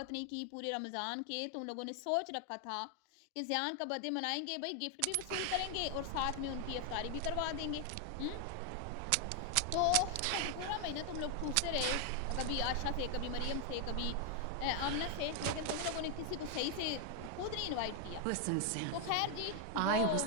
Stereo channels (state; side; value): different; both; correlation 0.00